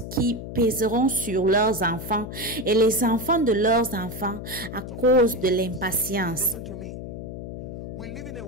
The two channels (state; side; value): noise; left; hum, 9 dB below the sound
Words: qui pèseront sur leurs enfants et les enfants de leurs enfants à cause de l'impatience.